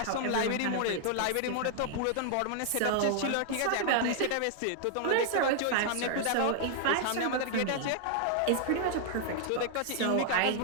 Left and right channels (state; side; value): different; both; correlation 0.00